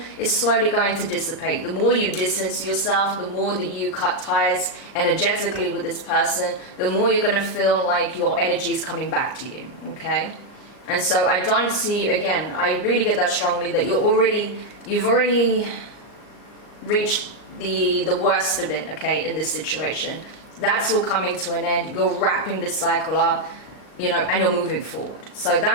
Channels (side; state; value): right; late; 38 ms